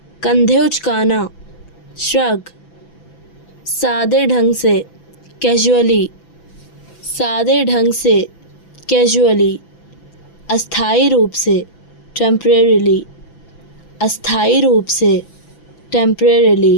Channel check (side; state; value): right; late; 6.0 ms